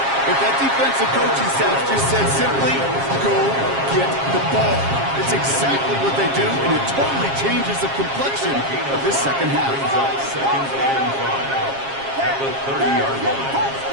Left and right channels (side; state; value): left; late; 7.4 ms